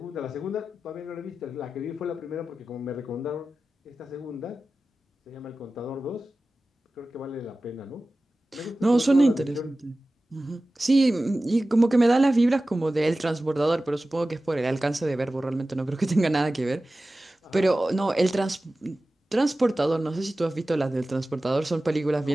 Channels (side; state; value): both; normal; correlation 0.96